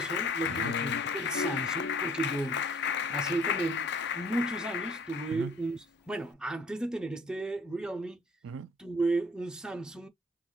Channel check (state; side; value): normal; both; correlation 0.55